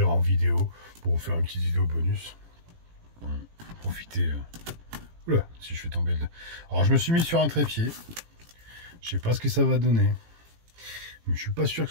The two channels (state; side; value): late; left; 18 ms